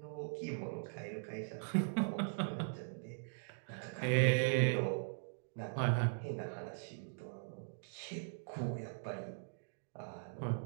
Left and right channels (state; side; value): silent; left; digital silence